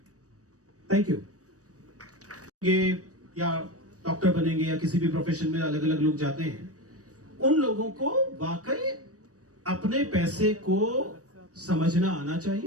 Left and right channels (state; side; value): late; left; 0.66 ms